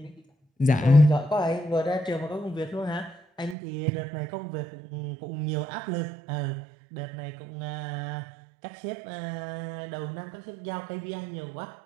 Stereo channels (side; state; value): left; drops out; at 3.6 s